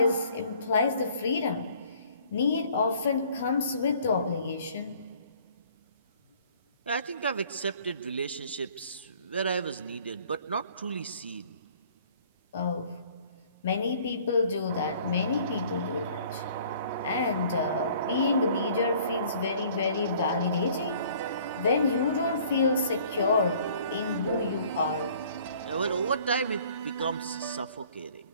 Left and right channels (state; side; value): inverted; both; correlation -0.55